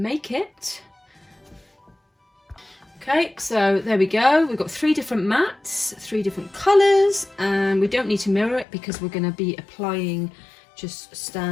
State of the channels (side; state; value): right; drops out; at 8.7 s